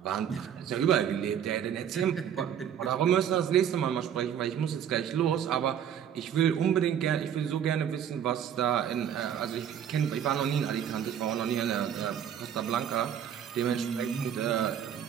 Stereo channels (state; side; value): quieter; left; 9.1 dB